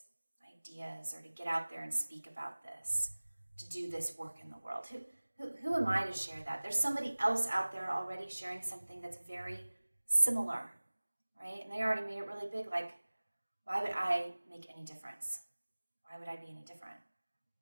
ideas or to get out there and speak about this, to do this work in the world? Who am I to share that? There's somebody else out there already sharing something that's very similar, right? And they already made it really big. Like, why would I make any difference? Why would I be any different?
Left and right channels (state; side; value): inverted; both; correlation -1.00